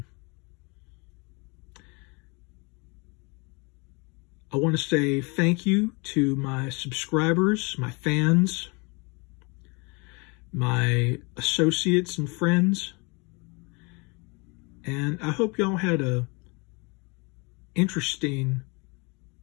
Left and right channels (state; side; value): quieter; right; 29.9 dB